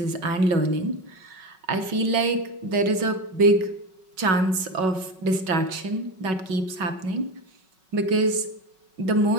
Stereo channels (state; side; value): late; left; 5.4 ms